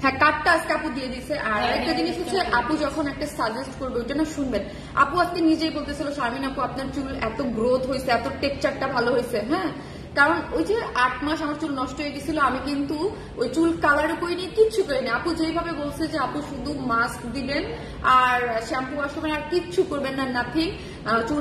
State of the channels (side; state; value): both; identical; correlation 1.00